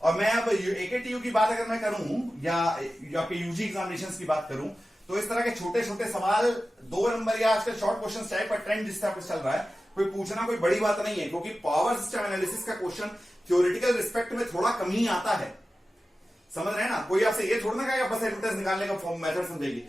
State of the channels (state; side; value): normal; both; correlation 0.94